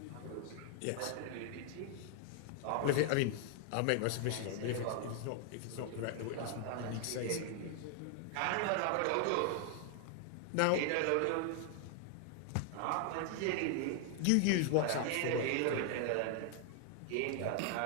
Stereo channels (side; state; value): both; different; correlation 0.00